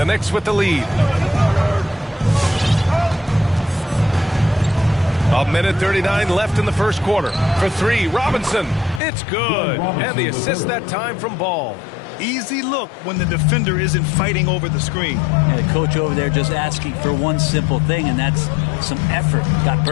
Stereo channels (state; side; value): drops out; right; at 9.0 s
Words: Knicks with the lead. A minute 39 left in the first quarter. For 3, Robinson. It's good. And the assist that time from Ball. Easy look when the defender isn't fighting over the screen. And the coach over there just asking for one simple thing, and that's some effort. Got